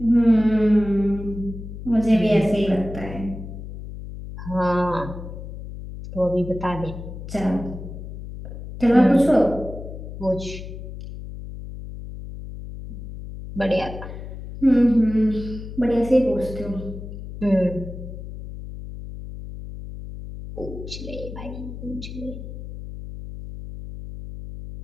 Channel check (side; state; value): left; noise; hum, 10 dB below the sound